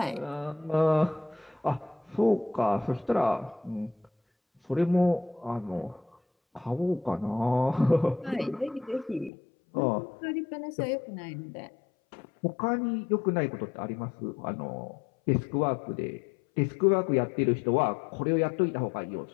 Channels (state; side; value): drops out; right; at 9.3 s